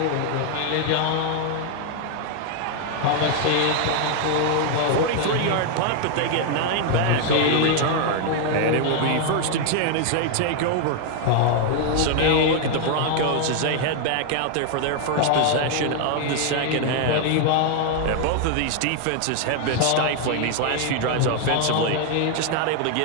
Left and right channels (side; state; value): both; different; correlation 0.00